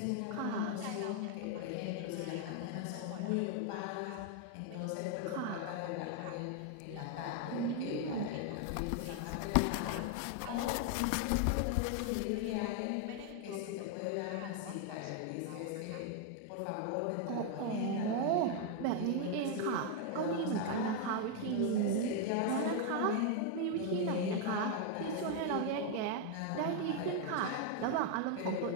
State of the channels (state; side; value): different; both; correlation 0.00